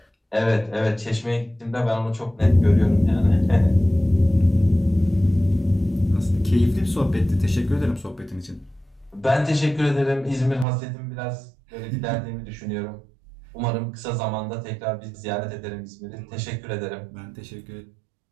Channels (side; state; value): left; drops out; at 10.7 s